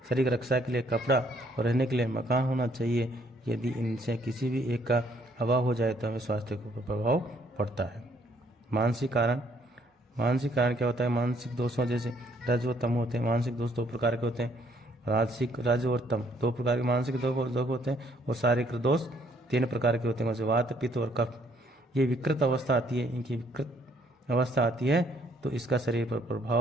की रक्षा के लिए कपड़ा और रहने के लिए मकान होना चाहिए। यदि इनसे किसी भी एक का अभाव हो जाए तो हमें स्वास्थ्य को प्रभाव पड़ता है। मानसिक कारण क्या होता है? मानसिक दोषों जैसे रज व तम होते हैं। मानसिक दोष 2 प्रकार के होते हैं, रज और तम 2 प्रकार के मानसिक दोष होते हैं, और शारीरिक दोष 3 प्रकार के होते हैं, जैसे वात, पित्त और कफ। ये विकृत अवस्था आती है, इनकी विकृत अवस्था आती है तो इसका शरीर पर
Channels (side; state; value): both; normal; correlation 0.66